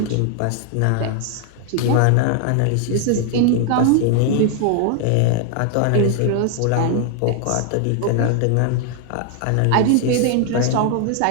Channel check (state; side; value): different; both; correlation 0.00